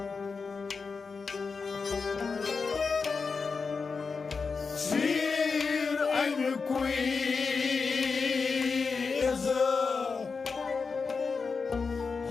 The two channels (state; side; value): quieter; right; 4.9 dB